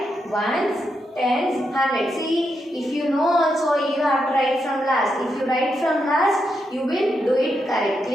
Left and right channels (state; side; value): normal; both; correlation 0.83